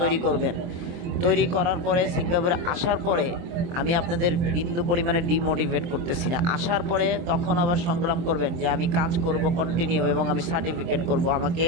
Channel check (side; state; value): left; late; 23 ms